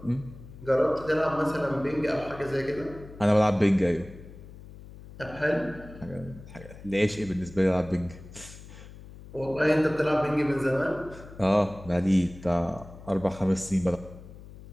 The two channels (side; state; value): left; noise; hum, 17 dB below the sound